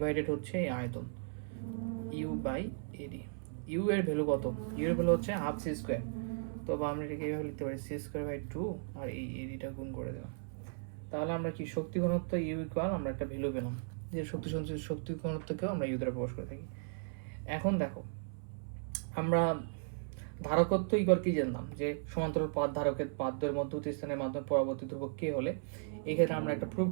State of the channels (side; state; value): left; silent; 54 dB below the other